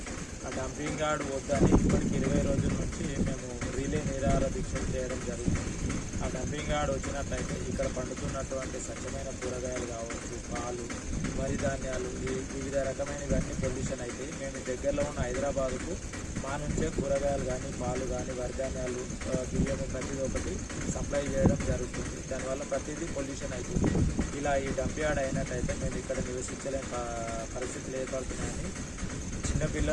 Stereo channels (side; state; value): both; identical; correlation 1.00